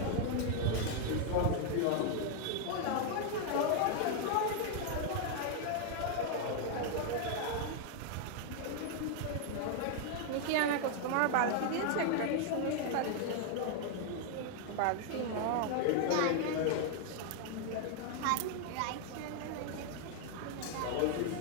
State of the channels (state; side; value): different; both; correlation 0.00